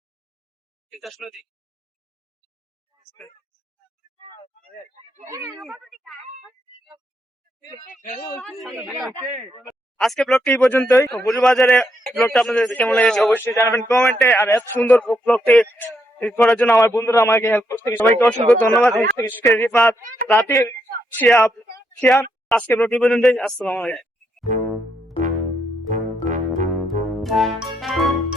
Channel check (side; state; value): both; normal; correlation 0.78